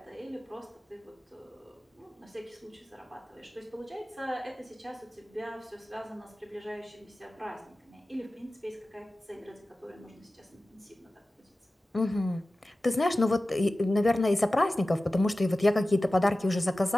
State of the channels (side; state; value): both; normal; correlation 0.96